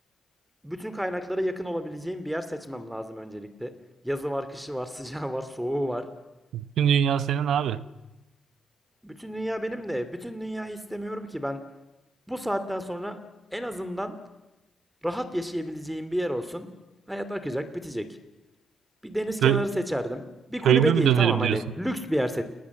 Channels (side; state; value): left; quieter; 4.1 dB